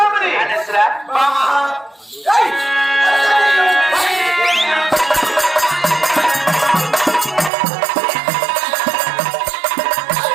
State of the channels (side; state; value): left; drops out; at 7.5 s